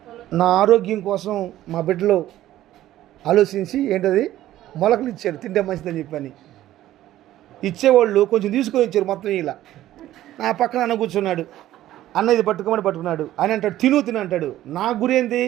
నా ఆరోగ్యం కోసం మా బిడ్డలో ఆలోచించి ఏంటది మొలకలు ఇచ్చారు, తింటే మంచిదని చెప్పని. ఇచ్చేవాళ్ళు కొంచెం తీసుకొని ఇచ్చారు మొత్తం. ఇలా నా పక్కన అన్న కూర్చున్నాడు. అన్న ఇది పట్టుకోమని పట్టుకున్నాడు. ఆయన అంటాడు తిను అంటాడు. నా గురి ఏంది,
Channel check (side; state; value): left; quieter; 13.9 dB